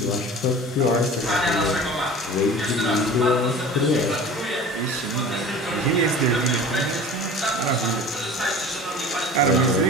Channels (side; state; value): both; normal; correlation 0.40